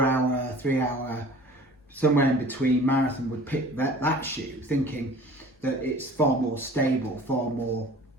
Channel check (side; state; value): both; normal; correlation 0.45